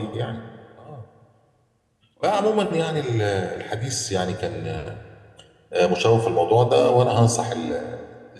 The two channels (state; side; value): identical; both; correlation 1.00